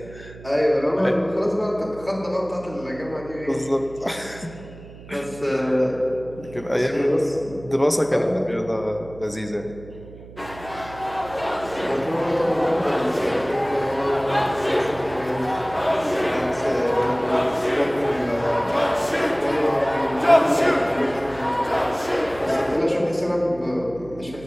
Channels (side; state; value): right; noise; hum, 17 dB below the sound